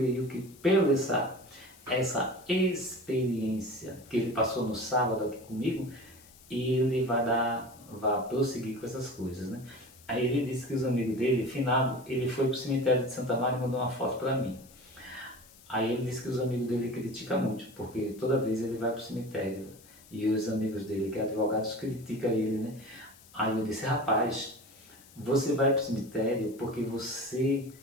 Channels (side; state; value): left; noise; hiss, 24 dB below the sound